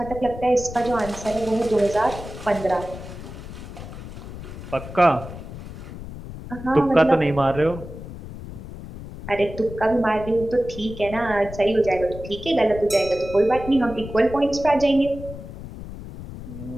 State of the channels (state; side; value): noise; left; rumble, 12 dB below the sound